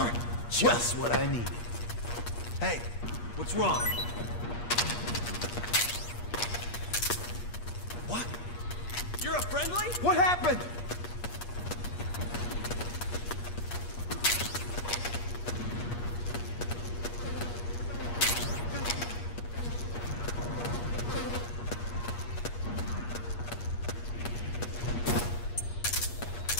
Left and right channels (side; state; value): right; late; 8.4 ms